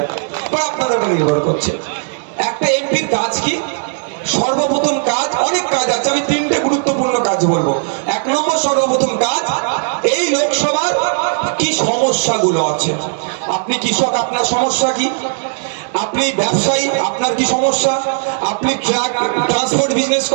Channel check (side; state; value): left; silent; 62 dB below the other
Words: বা আপনাদের উপর নির্ভর করছে। একটা এমপির কাজ কি? সর্বপ্রথম কাজ, অনেক কাজ আছে, আমি 3টে গুরুত্বপূর্ণ কাজ বলবো। 1 নম্বর সর্বপ্রথম কাজ, এই লোকসভার কি সমস্যাগুলো আছে। আপনি কৃষক, আপনার সমস্যা কি? আপনি ব্যবসায়ী, আপনার কি সমস্যা? আপনি ট্রাক ট্রান্সপোর্ট বিজনেস